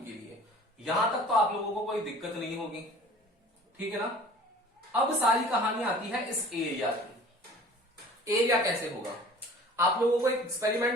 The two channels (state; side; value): normal; both; correlation 0.46